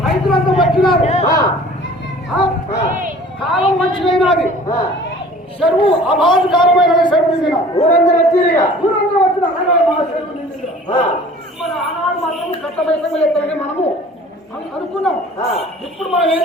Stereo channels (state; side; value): normal; both; correlation 0.47